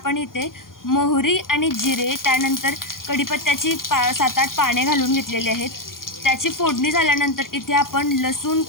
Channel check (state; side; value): late; right; 0.91 ms